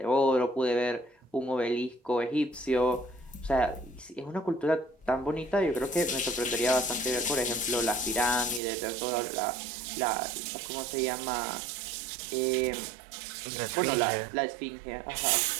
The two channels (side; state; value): left; drops out; at 8.6 s